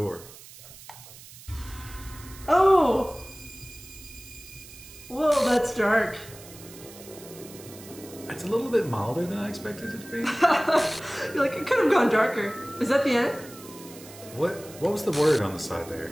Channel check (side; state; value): right; noise; hiss, 18 dB below the sound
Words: Oh! Whoa, that's dark. It's a little bit milder than I expected it to be. You're like, it could have gone darker. Is that the end? What was the word on the side there?